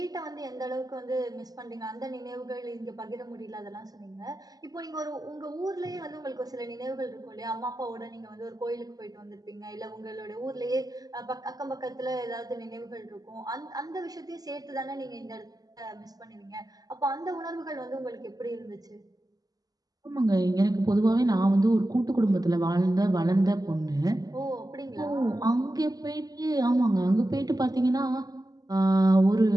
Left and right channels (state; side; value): late; left; 0.18 ms